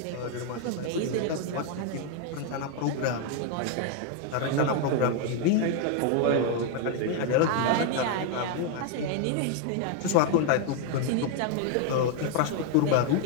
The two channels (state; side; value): different; both; correlation 0.01